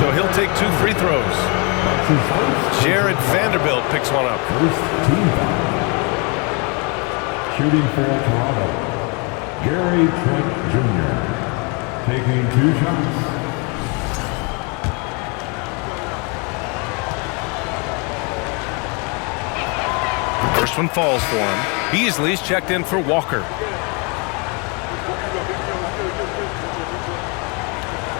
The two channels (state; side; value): quieter; right; 32.3 dB